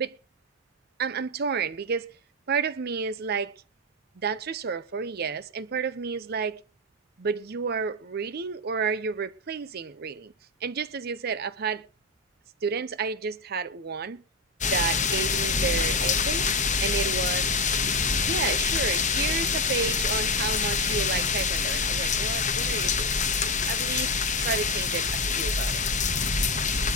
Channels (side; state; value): both; normal; correlation 0.10